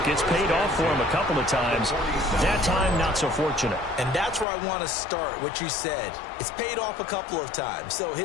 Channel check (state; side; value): drops out; right; at 4.5 s